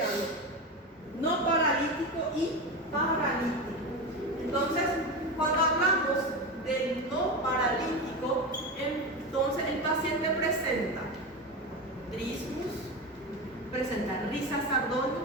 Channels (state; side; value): normal; both; correlation 0.20